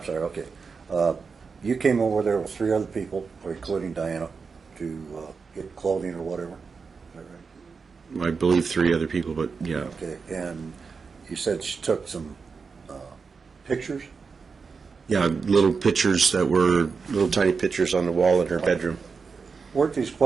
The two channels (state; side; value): quieter; left; 5.1 dB